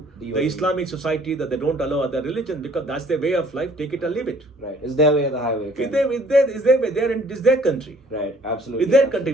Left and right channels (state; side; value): normal; both; correlation 0.58